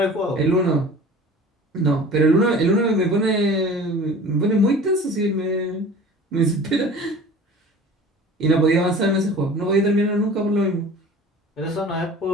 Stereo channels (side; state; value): both; normal; correlation 0.42